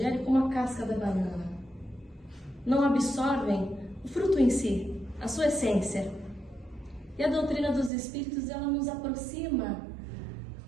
como a casca da banana. Não absorvem o fruto em si, a sua essência. E a doutrina dos Espíritos, ela nos aproxima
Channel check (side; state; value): left; drops out; at 7.9 s